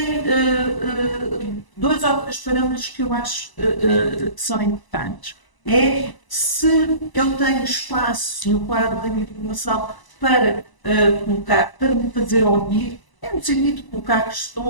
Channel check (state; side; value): late; right; 1.0 ms